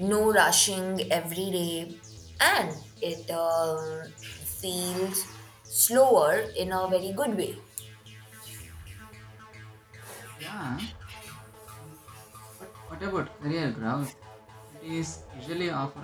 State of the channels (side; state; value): both; identical; correlation 1.00